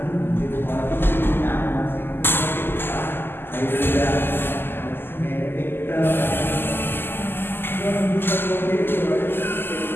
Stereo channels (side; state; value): right; late; 0.10 ms